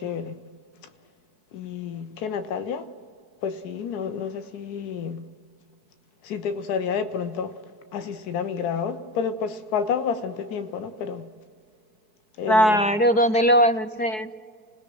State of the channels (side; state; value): right; late; 4.7 ms